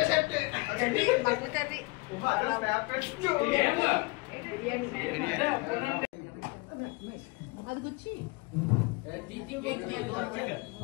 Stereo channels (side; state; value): right; quieter; 26.3 dB